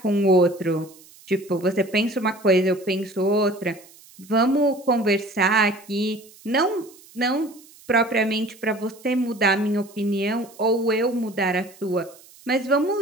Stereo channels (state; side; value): noise; right; hiss, 24 dB below the sound